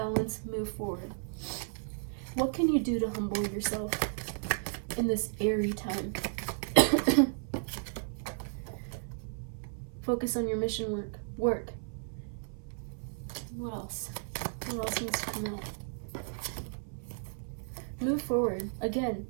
Move forward. What can you do to humble yourself in this airy time? Focus on your mission work. What else? What else needs to come out? Move move forward. Again,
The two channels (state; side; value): silent; left; 55 dB below the other